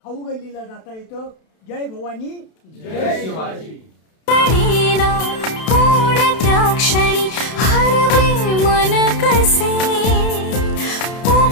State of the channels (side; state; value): right; late; 32 ms